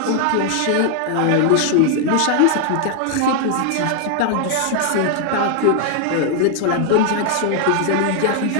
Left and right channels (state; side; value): different; both; correlation 0.00